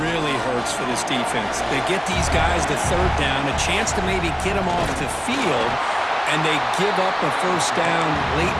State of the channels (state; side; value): identical; both; correlation 1.00